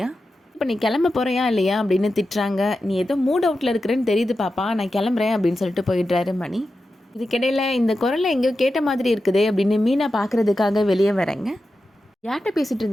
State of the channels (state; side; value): normal; both; correlation 0.91